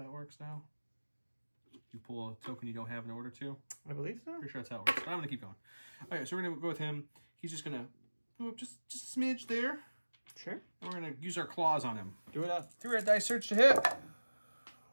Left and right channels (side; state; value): both; inverted; correlation -1.00